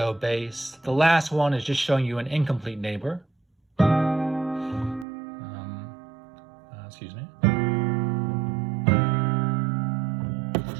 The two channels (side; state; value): left; drops out; at 5.1 s